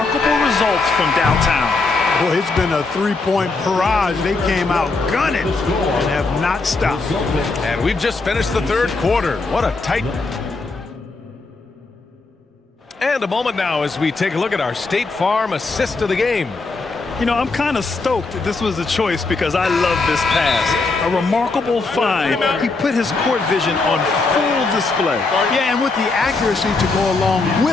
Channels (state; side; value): quieter; right; 3.8 dB